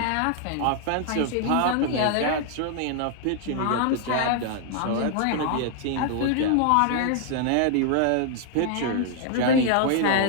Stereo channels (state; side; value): different; both; correlation 0.00